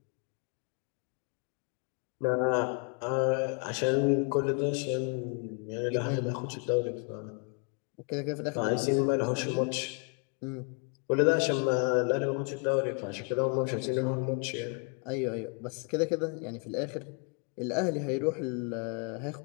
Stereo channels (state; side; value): quieter; right; 37.4 dB